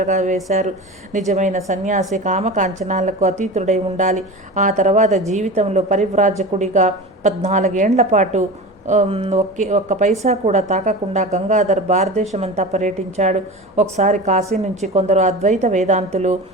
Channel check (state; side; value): normal; both; correlation 0.31